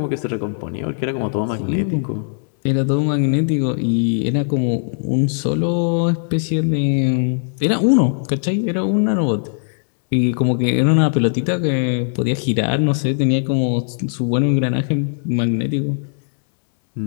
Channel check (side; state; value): right; silent; digital silence